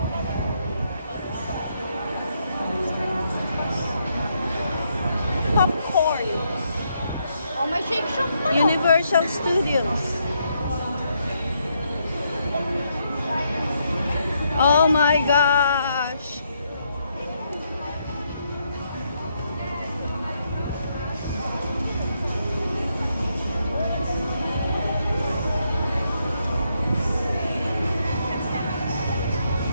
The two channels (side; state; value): both; inverted; correlation -0.77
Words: Popcorn. Oh, may shake shop pa. Universal Studios. Oh my gosh.